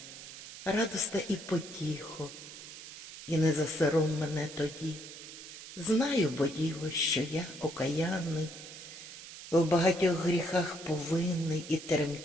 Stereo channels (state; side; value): noise; right; hiss, 13 dB below the sound